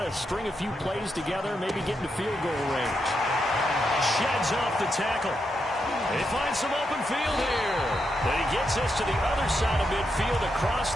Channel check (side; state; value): both; normal; correlation 0.83